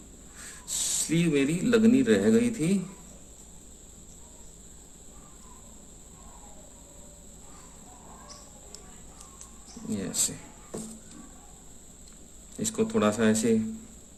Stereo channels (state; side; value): identical; both; correlation 1.00